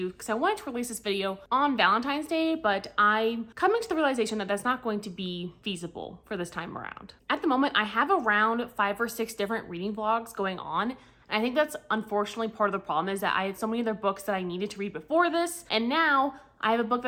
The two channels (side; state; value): both; identical; correlation 1.00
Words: because I wanted to release this video on Valentine's Day, but I'm coming to the realization that that's not going to be feasible for this time around. At the moment, I have around 5 or 6 different reading vlogs going on. And I think that's unfortunately part of the problem, is that I had so many other books that I needed to read before this, and now I have a book